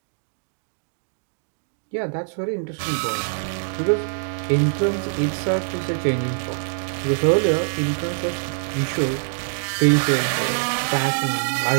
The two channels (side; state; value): left; silent; digital silence